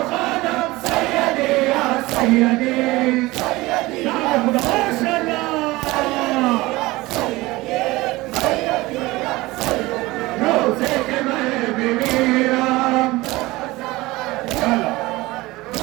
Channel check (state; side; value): quieter; left; 20.2 dB